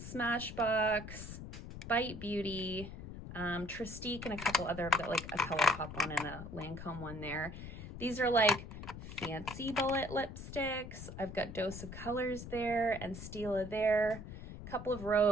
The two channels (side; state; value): left; noise; rumble, 11 dB below the sound